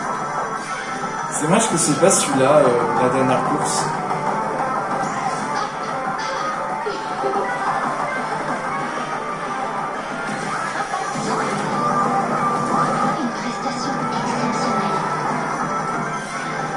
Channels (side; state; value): both; identical; correlation 1.00